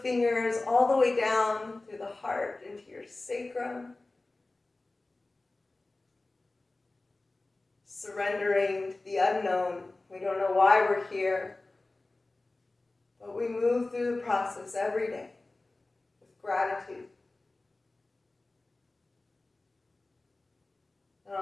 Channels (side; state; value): right; quieter; 3.1 dB